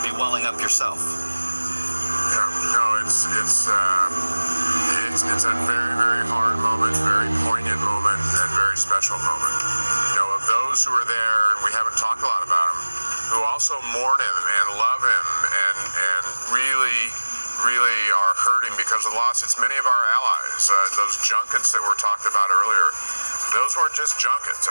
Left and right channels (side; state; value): both; inverted; correlation -1.00